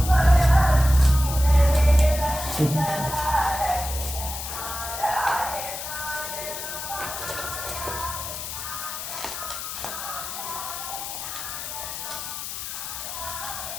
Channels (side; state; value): left; noise; hiss, 7 dB below the sound